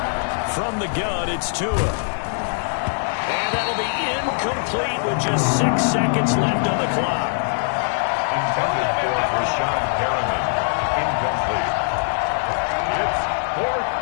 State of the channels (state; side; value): silent; right; digital silence